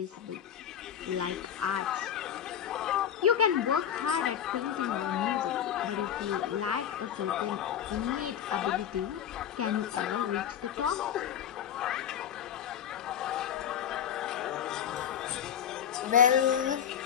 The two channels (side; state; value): right; quieter; 9.4 dB